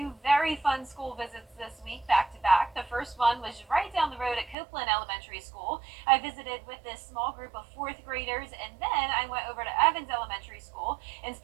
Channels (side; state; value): left; drops out; at 4.5 s